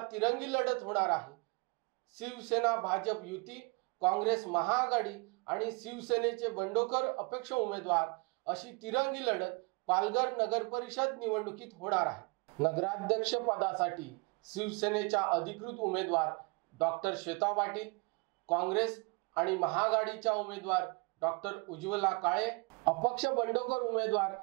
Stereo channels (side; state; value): left; quieter; 29.7 dB